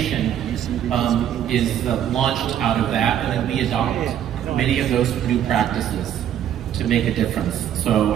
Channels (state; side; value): quieter; left; 10.2 dB